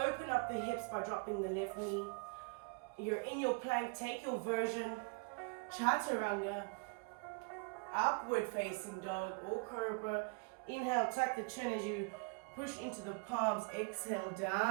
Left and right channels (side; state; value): left; quieter; 31.2 dB